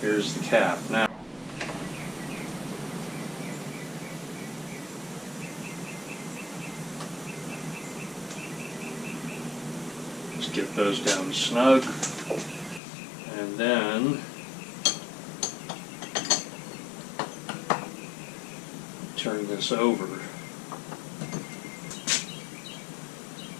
the cap. Now, just get those down snug, and then turn this over.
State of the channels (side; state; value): right; drops out; at 12.8 s